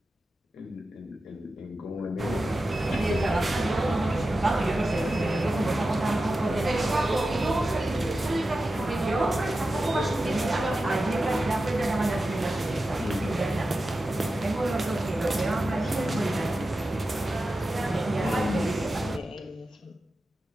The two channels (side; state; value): both; normal; correlation 0.92